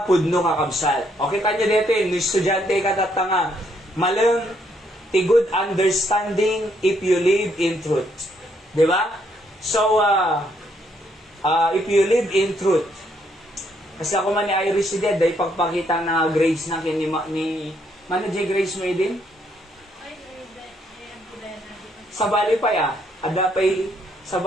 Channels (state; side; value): normal; both; correlation 0.72